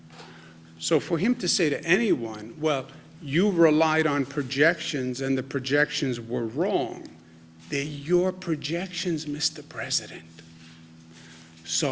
So for him to say to anyone, well, you relied on projections and the projections were wrong, they're your projections, Mr. President.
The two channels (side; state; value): both; identical; correlation 1.00